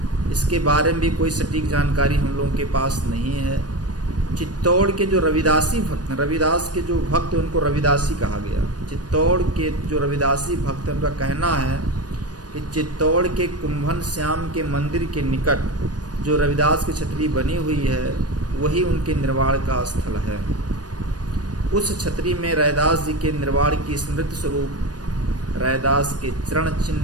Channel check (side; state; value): left; late; 0.69 ms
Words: इसके बारे में भी कोई सटीक जानकारी हम लोगों के पास नहीं है। चित्तौड़ के जो रविदासी भक्त हैं, रविदास के जो भक्त हैं उनको रविदासी कहा गया। चित्तौड़ के जो रविदासी भक्त हैं उनका कहना है कि चित्तौड़ के कुंभन श्याम के मंदिर के निकट जो रविदास की छतरी बनी हुई है वही उनके निर्वाण का स्थल है। उस छतरी में रैदास जी के निर्वाण की स्मृति स्वरूप रैदास के चरण